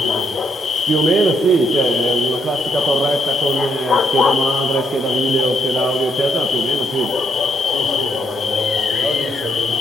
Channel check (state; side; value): normal; both; correlation 0.75